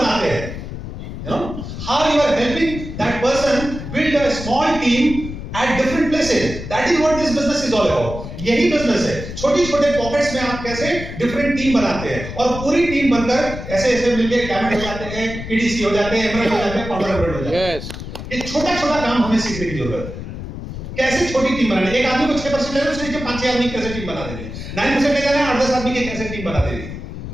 हैं, you know how you are helping that person build a small team at different places. That is what this business is all about. यही बिजनेस है, छोटी छोटे पॉकेट्स में आप कैसे डिफरेंट टीम बनाते हैं और पूरी टीम बनकर ऐसे ऐसे मिलके डायमंड हो जाते हैं, ईडीसी हो जाते हैं, एमएल हो जाते हैं, फाउंडर हो जाते हैं। ये छोटा छोटा काम हमें सीखने की जरूरत है, कैसे छोटी टीम बनानी। एक आदमी को 6% लेना, उसके नीचे 5-6 आदमी कैसे टीम बना देंगे, 9% ले जाना है, 8-10 आदमी के कैसे टीम बना देंगे।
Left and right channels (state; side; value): noise; left; rumble, 9 dB below the sound